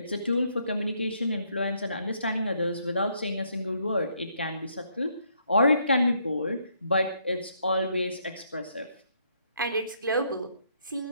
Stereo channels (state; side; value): inverted; both; correlation -0.72